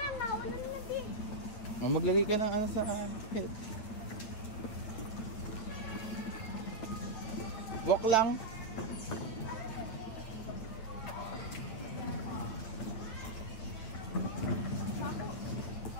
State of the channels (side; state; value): right; late; 8.9 ms